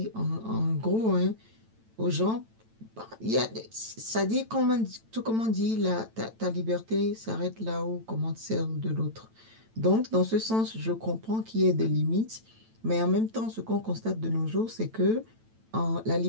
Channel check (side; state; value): left; late; 9.0 ms